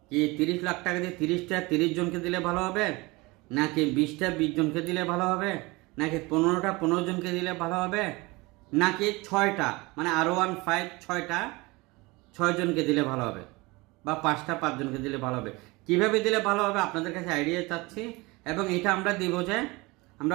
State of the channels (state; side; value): quieter; left; 23.8 dB